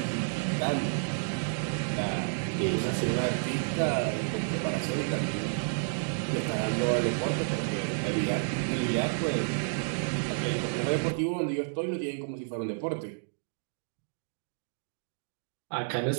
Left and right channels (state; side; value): silent; left; digital silence